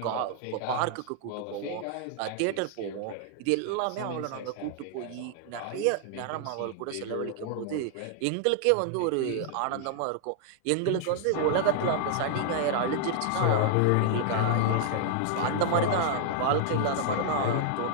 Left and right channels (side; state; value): both; different; correlation -0.01